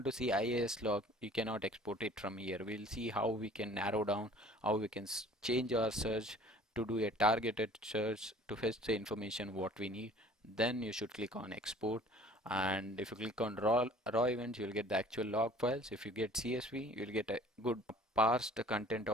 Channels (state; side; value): normal; both; correlation 0.50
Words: to see IAS log, you cannot export it from here. We'll see how we can narrow down, how we can change our search to do a targeted search to fetch the information what we need. Then you should click on export, and if you click on raw events, you'll get the actual log files. If you get CSV, you'll get a good parsed content